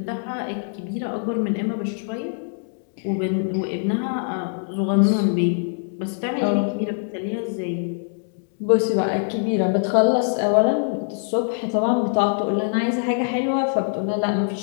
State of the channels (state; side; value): silent; right; digital silence